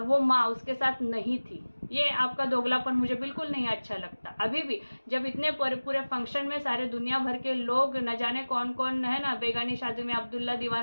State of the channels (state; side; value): inverted; both; correlation -1.00